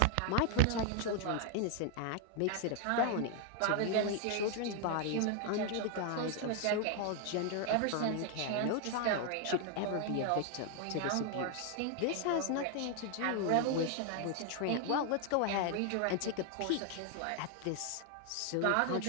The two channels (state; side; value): different; both; correlation 0.00